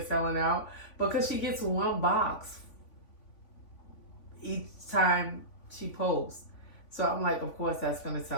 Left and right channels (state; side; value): late; right; 3.5 ms